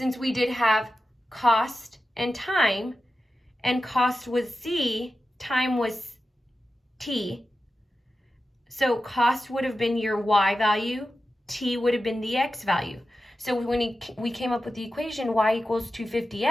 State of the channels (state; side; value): normal; both; correlation 0.93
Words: we did have cost and time, and cost was C, time was T. So cost would have been your y value, T would have been the x value. So when we came up with the equation y equals